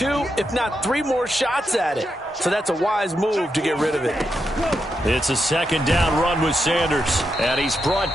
if not 3 more shots at it. So that's a wise move to get rid of it. It's a 2nd down run with Sanders. And he's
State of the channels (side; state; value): both; normal; correlation 0.84